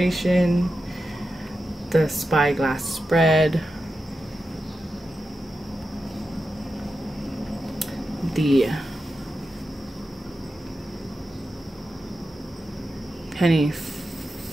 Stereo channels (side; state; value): both; normal; correlation 0.90